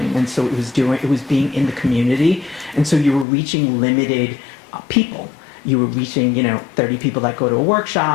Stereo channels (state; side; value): drops out; right; at 3.2 s